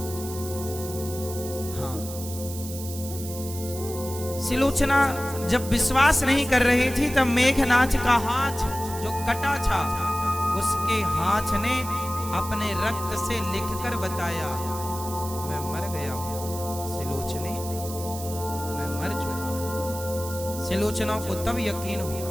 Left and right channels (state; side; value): noise; right; hiss, 11 dB below the sound